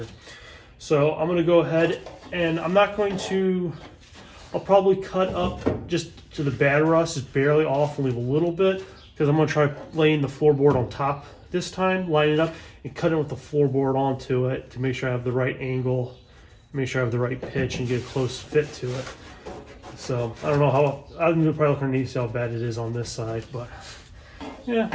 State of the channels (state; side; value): identical; both; correlation 1.00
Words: So I'm going to go ahead and I'm not going to, I'll probably cut up just to the bad rust, just barely off and leave a little bit, because I'm going to try laying the floorboard on top this time, line it up and cut it with the floorboard onto it to make sure I have the right angle, make sure I have the right pitch and get a close fit to it. So I don't know how, I'm probably looking to see how bad it is on this side, but yeah,